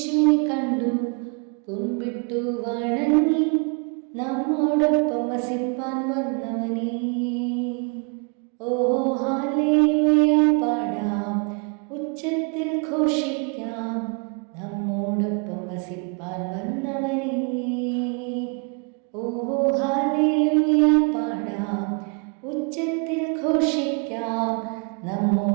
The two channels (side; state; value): left; quieter; 36.1 dB